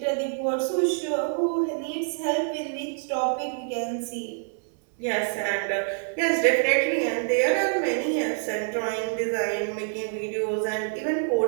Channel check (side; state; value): left; silent; 61 dB below the other